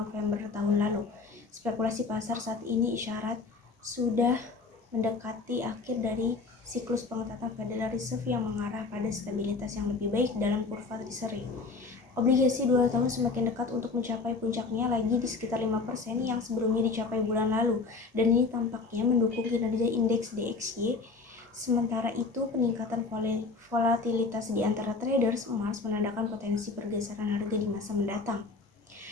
tahun lalu. Spekulasi pasar saat ini isyarat sudah mendekati akhir dari siklus pengetatan Federal Reserve yang mengarah pada stabilitas yang lebih baik dalam kurva Treasury. Obligasi 2 tahun semakin dekat untuk mencapai puncaknya lagi di sekitar 5% yang sebelumnya dicapai bulan lalu, dan ini tampaknya mendukung kinerja indeks DXY. Sementara itu, peningkatan volatilitas di antara traders emas menandakan potensi pergeseran harga di masa mendatang.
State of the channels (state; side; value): quieter; right; 4.1 dB